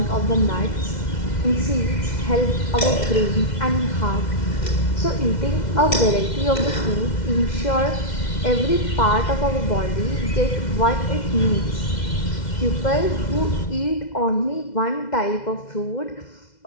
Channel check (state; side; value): late; right; 2.1 ms